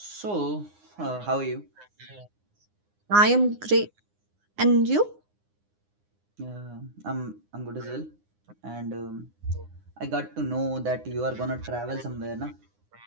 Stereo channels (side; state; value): left; late; 9.7 ms